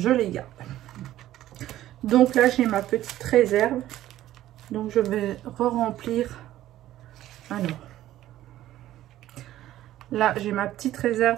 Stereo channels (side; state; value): left; quieter; 13.7 dB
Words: les garde. Donc là, j'ai ma petite réserve. Donc je vais re-remplir. Alors. Là, j'ai ma petite